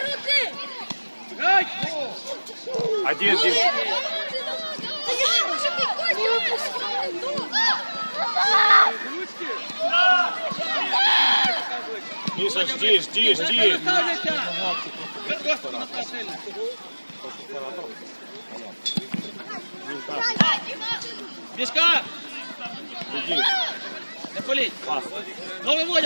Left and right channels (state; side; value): inverted; both; correlation -1.00